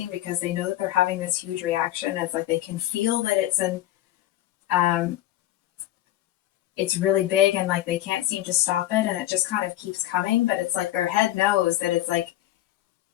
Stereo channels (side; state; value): right; quieter; 14.5 dB